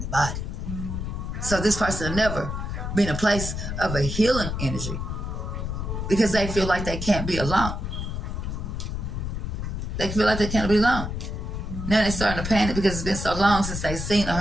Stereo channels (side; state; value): left; noise; rumble, 4 dB below the sound